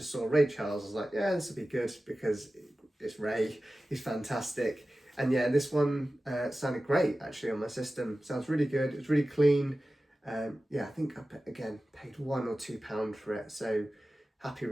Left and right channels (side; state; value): both; normal; correlation 0.95